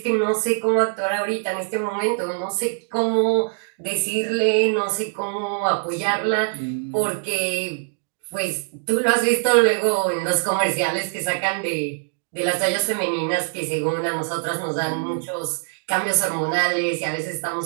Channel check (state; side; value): silent; left; 63 dB below the other